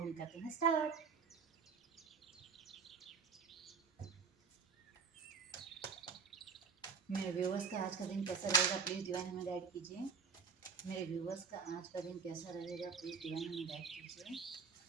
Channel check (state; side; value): quieter; left; 5.5 dB